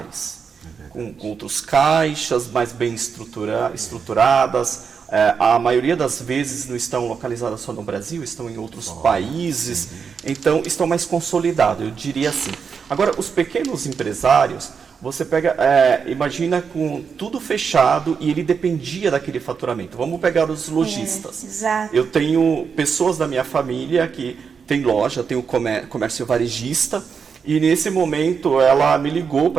com outros caixas mais bem estruturadas. A maioria das vezes não estão localizadas só no Brasil, estão em outros países, então estão mais consolidados, eu diria assim. Agora, os pequenos empresários, você pega, imagina com tudo fechado e ele dependia daquele faturamento. Vamos pegar os lojistas. Exato. Eu tenho pessoas da minha família que tem loja, tem o comércio varejista, e nesse momento ela me ligou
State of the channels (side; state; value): left; quieter; 6.1 dB